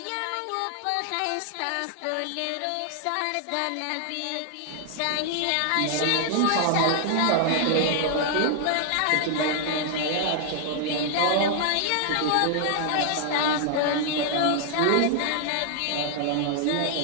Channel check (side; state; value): both; different; correlation 0.00